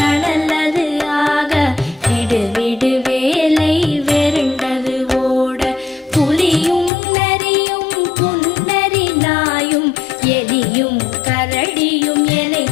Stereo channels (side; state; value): right; drops out; at 6.9 s